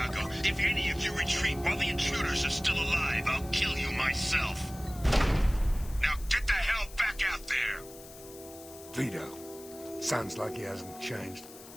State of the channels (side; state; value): left; noise; hiss, 18 dB below the sound